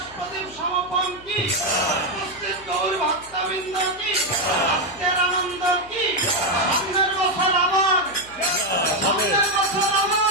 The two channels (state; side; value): noise; left; hum, 24 dB below the sound